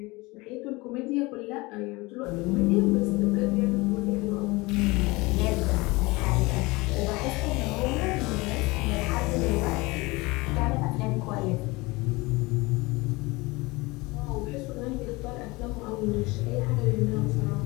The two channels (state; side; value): quieter; right; 23.3 dB